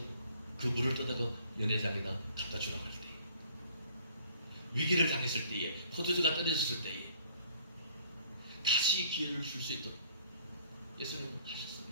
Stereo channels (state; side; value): inverted; both; correlation -0.57